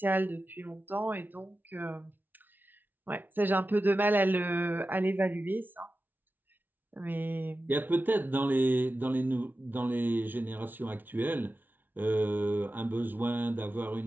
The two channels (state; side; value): late; left; 0.089 ms